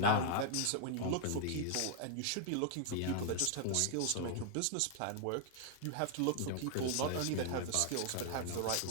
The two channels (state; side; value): different; both; correlation 0.00